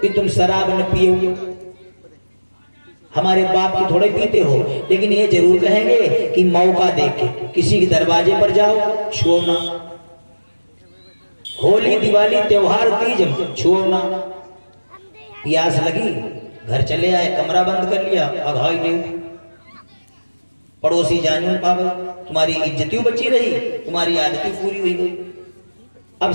कि तुम शराब न पियो, हमारे बाप की थोड़े पीते हो, लेकिन ये जरूर कहेंगे कि मौका देके किसी के दरवाजे पर जाओ, छुओ ना। होली, दिवाली, त्योहार, तीज, छुओ ना। प्यास लगी, घर चले आए, कमरा बंद कर लिया, अघाई नहीं, पड़ोसी जान पावे, तुम्हारी इज्जतियों बची रही, तुम्हारी आदतें पूरी हुई गई। अब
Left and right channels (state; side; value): inverted; both; correlation -1.00